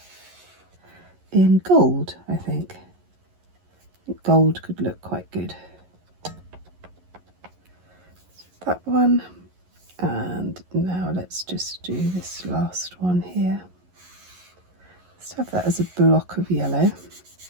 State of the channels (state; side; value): late; left; 11 ms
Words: in gold. I think gold could look quite good. That one, and now let's just do this last one here. Let's have that as a block of yellow.